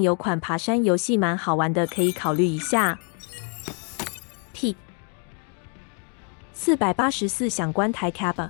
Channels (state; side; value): quieter; right; 39.6 dB